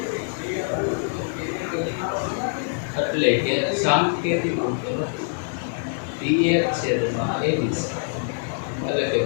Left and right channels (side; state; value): right; silent; 58 dB below the other